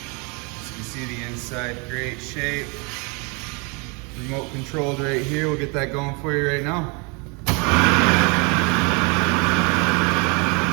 You see the inside, great shape. Remote controlled right here. We'll get that going for you right now.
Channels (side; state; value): left; quieter; 31.5 dB